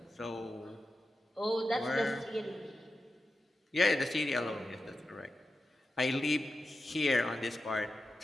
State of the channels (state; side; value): normal; both; correlation 0.91